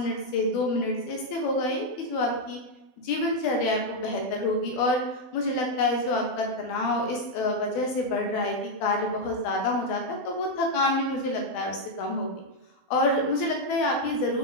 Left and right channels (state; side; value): late; right; 12 ms